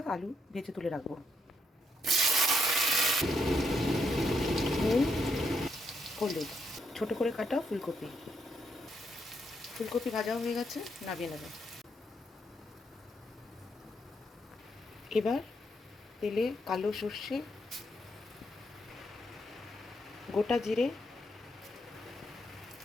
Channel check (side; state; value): both; normal; correlation 0.77